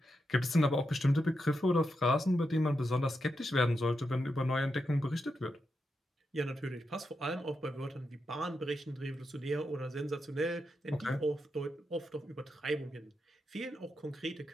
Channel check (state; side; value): normal; both; correlation 0.86